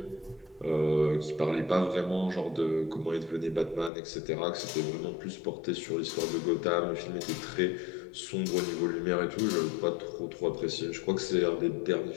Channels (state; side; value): drops out; right; at 3.9 s